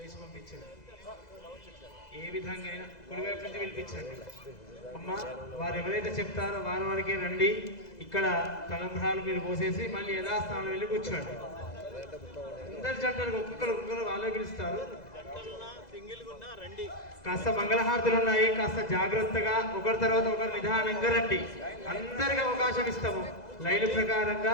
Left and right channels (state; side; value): late; right; 2.0 ms